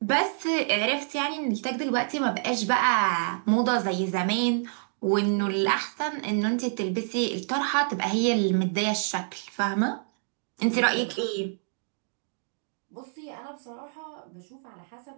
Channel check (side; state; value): left; silent; digital silence